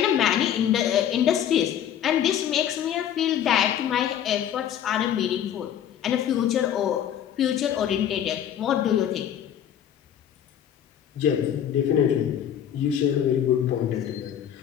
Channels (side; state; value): right; quieter; 9.9 dB